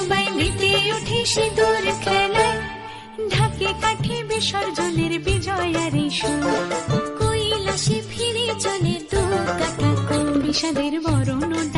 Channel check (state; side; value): identical; both; correlation 1.00